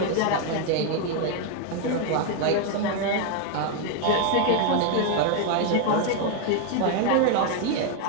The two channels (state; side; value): different; both; correlation 0.01